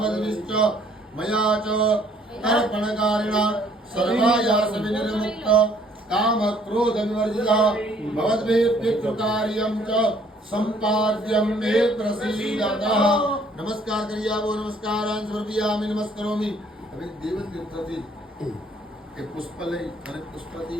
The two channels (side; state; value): both; normal; correlation 0.62